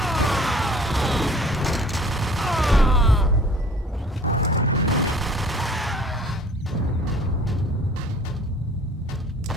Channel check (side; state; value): both; normal; correlation 0.49